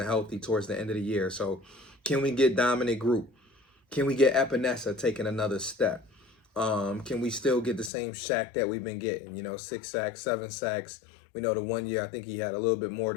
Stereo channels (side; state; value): right; drops out; at 7.9 s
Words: healthy towards the end of the year, so can we get dominant group? Can we get Epinesa taking another step? Can we still get the same Shaq that we've been getting, 6 sacks, 7 sacks? We know the 1 year, I think he had a little bit more